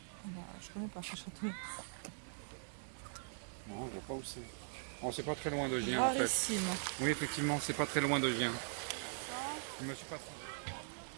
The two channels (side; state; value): left; silent; digital silence